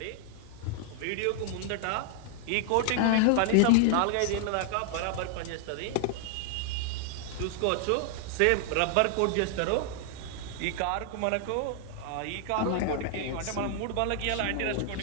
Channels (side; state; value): both; different; correlation 0.00